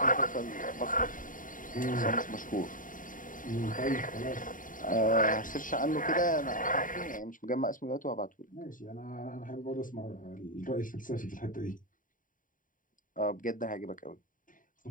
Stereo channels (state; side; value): late; right; 0.39 ms